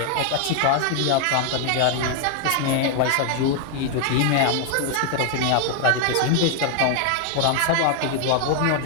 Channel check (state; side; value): different; both; correlation 0.00